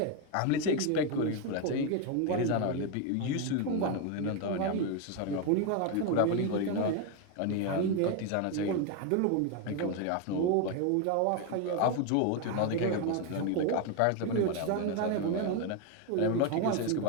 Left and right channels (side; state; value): both; different; correlation 0.01